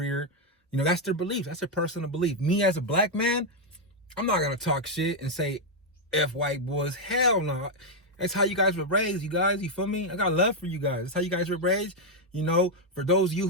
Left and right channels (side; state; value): both; normal; correlation 0.00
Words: You know, that's their belief. That's their personal belief. Me as a black man, I'm not going to talk shit and say F white boys. Hell no. That's how you guys were raised, you guys. You feel me? I got love for you guys. That's how you guys were raised. You know, for those of you